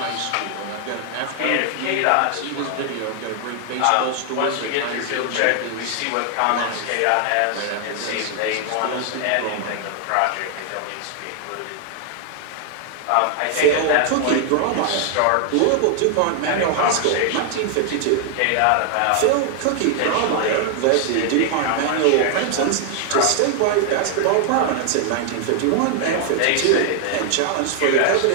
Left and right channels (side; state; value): both; different; correlation 0.00